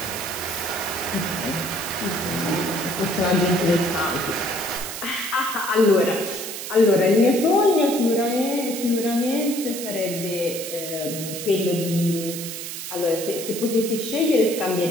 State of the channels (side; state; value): right; noise; hiss, 7 dB below the sound